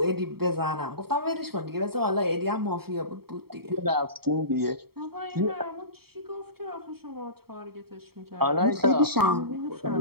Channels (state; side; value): late; left; 0.95 ms